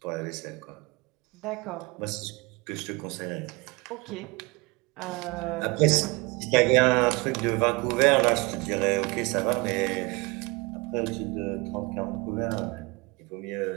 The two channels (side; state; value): left; quieter; 26.2 dB